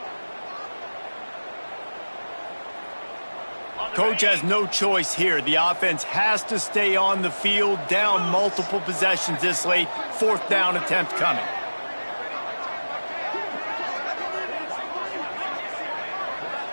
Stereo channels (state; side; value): inverted; both; correlation -1.00